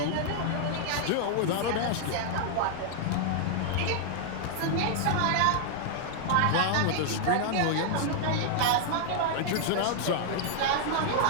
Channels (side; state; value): both; different; correlation 0.00